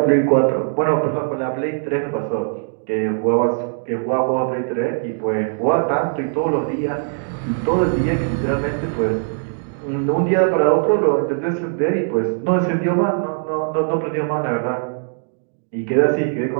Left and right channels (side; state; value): left; silent; 66 dB below the other